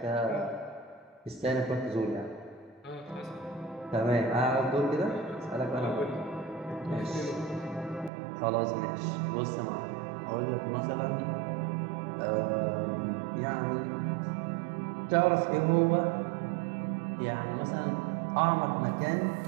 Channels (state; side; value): drops out; left; at 8.1 s